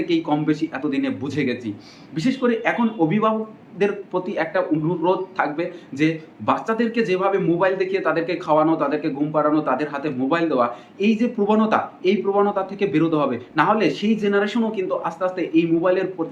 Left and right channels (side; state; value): both; identical; correlation 1.00